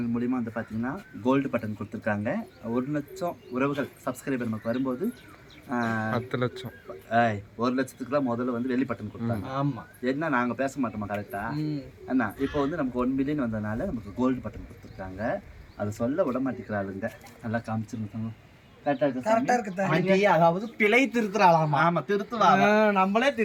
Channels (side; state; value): both; identical; correlation 1.00